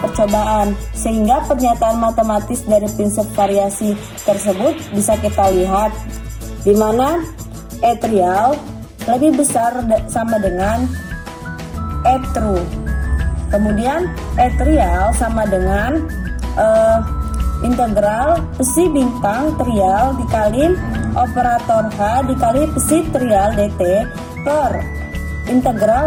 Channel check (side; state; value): both; identical; correlation 1.00